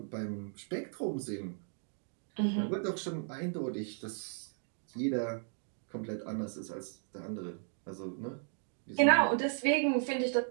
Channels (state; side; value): silent; left; 54 dB below the other